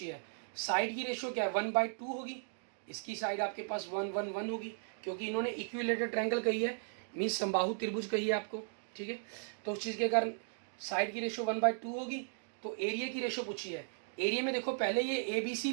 है, साइड की रेशियो क्या है 1/2 होगी, इसकी साइड आपके पास 1 1 1 होगी, क्योंकि इन्होंने इक्विलेटरल ट्रायंगल कही है, मीन्स समबाहु त्रिभुज कही है आपको, ठीक है। तो उस चीज़ के कारण साइड की रेशियो 1/2 होगी। तो एरिया की रेशियो पूछी है, एरिया में देखो पहले ये ABC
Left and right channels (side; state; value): left; silent; digital silence